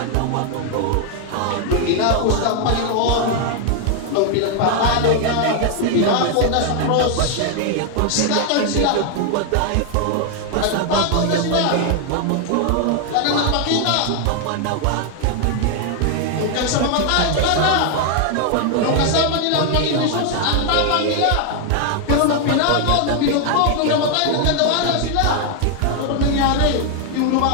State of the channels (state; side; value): different; both; correlation 0.00